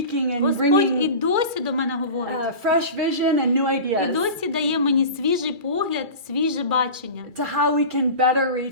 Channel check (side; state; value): left; late; 2.3 ms